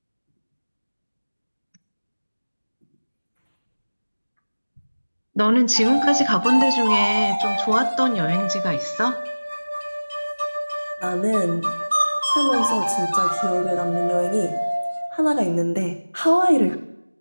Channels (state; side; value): inverted; both; correlation -1.00